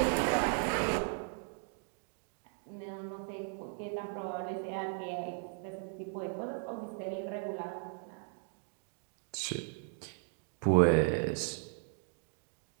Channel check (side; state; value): left; silent; 53 dB below the other